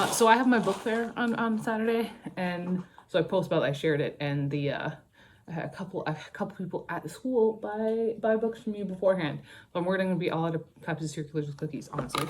So I have my book fair on Saturday, and so I post about it, I shared it, and the I had a couple people at the school buy books from me beforehand. So I'm worried I'm gonna be all out of copies of Circulars with Cookies, honestly.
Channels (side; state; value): both; identical; correlation 1.00